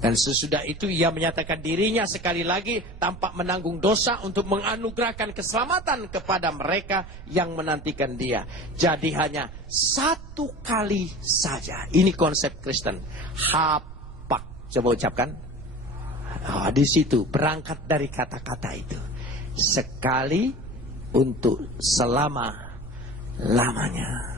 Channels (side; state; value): right; noise; rumble, 13 dB below the sound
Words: sesudah itu ia menyatakan dirinya sekali lagi tanpa menanggung dosa untuk menganugerahkan keselamatan kepada mereka yang menantikan dia. Jadi hanya satu kali saja. Ini konsep Kristen. Hapak. Coba ucapkan. Oh, di situ berangkat dari kata-kata itu. Sekali untuk